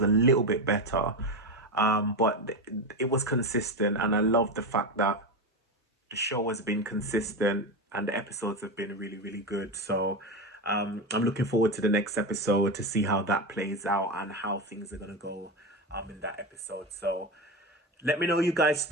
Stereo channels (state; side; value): normal; both; correlation 0.17